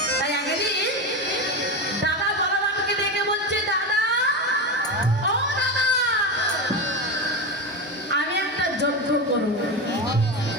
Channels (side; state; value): both; normal; correlation 0.18